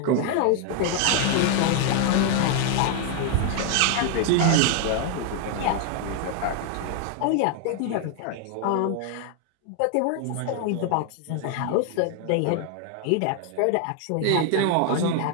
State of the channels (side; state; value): both; different; correlation 0.00